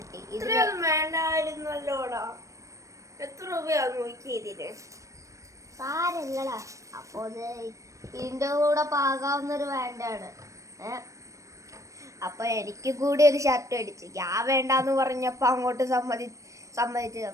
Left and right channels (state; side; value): late; left; 0.15 ms